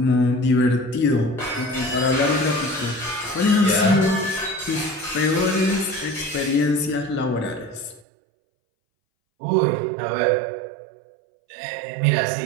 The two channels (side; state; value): left; drops out; at 8.1 s